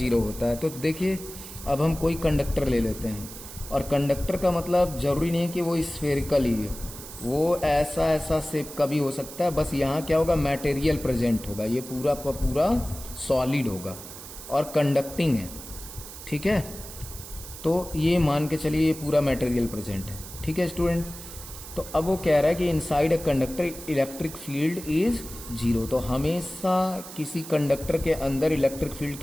होता है। तो देखिए, अब हम कोई कंडक्टर ले लेते हैं, और कंडक्टर का मतलब जरूरी नहीं है कि वो स्फेरिकल ही है, वो ऐसा ऐसा शेप का भी हो सकता है। बस यहाँ क्या होगा, मटेरियल प्रेजेंट होगा, ये पूरा का पूरा सॉलिड होगा और कंडक्टिंग है, ठीक है। तो ये मान के चलिए ये पूरा मटेरियल प्रेजेंट है, ठीक है स्टूडेंट। तो अब वो कह रहा है कि inside a conductor electric field is zero. तो हमेशा किसी कंडक्टर के अंदर इलेक्ट्रिक फील्ड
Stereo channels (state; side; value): noise; right; hiss, 13 dB below the sound